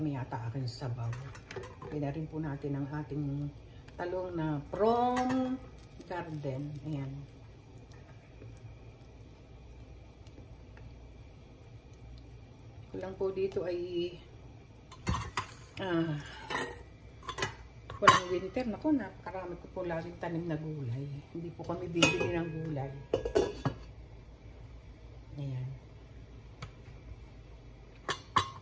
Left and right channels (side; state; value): both; identical; correlation 1.00